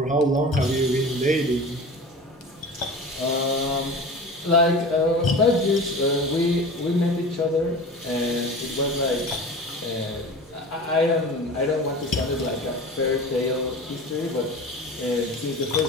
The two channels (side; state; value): both; normal; correlation 0.35